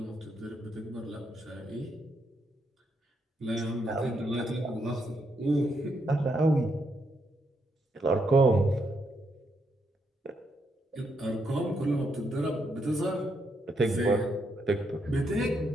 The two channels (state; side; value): normal; both; correlation 0.79